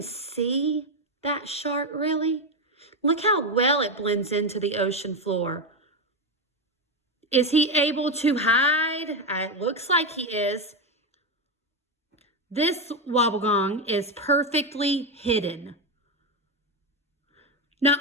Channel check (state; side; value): normal; both; correlation 0.10